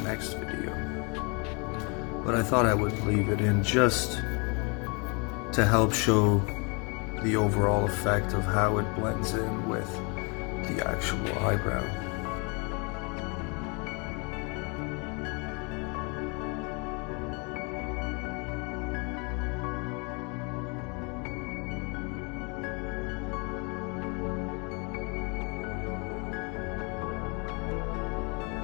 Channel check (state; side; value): quieter; right; 32.8 dB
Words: video. But I thought I would leave it in just to help show the overall effect of how it blends in with the actual eyebrow.